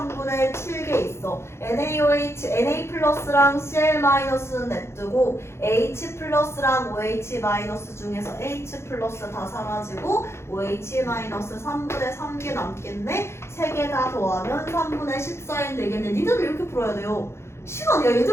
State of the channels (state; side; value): late; right; 0.13 ms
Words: 7개 있어. NaOH, Na 플러스랑 Cl 마이너스는 냅두고 H 플러스랑 OH 마이너스 중에서 H 플러스 다 사라지고 OH 마이너스 3분의 3개 남겠네. 3개 다 더하면 3분의 14인 되겠네. 니들 이렇게 풀어야 돼요. 시간, 야